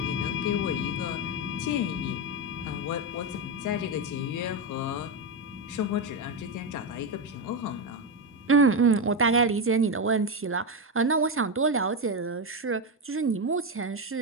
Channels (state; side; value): normal; both; correlation 0.10